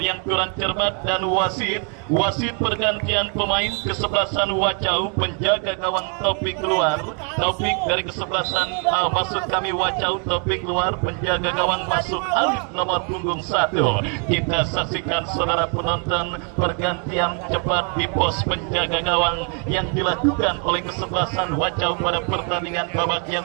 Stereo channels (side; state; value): left; quieter; 39.4 dB